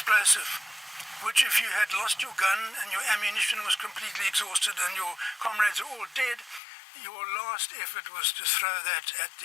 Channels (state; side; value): drops out; right; at 6.6 s